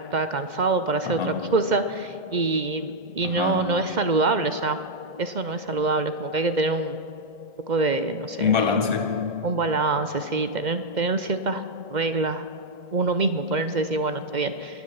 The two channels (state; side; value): late; left; 2.1 ms